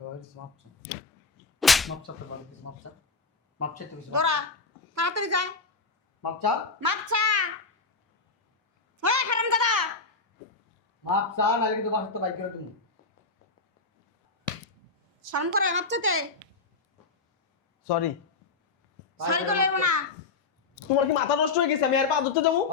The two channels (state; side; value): quieter; right; 4.2 dB